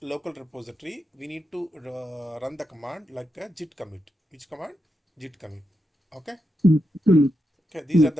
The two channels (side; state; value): both; normal; correlation 0.86